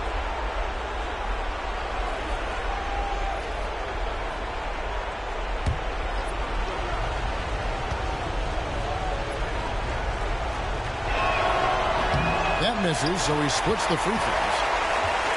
That misses, so he splits the free throws.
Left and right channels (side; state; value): both; identical; correlation 1.00